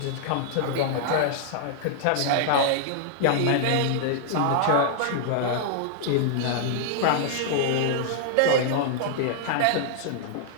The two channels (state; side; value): different; both; correlation -0.01